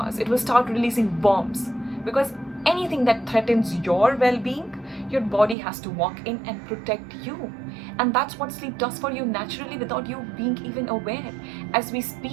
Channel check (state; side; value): drops out; left; at 5.6 s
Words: It will start releasing bombs, because anything that threatens your well-being, your body has to walk in and protect you. And that's what sleep does for you naturally, without you being even aware. As we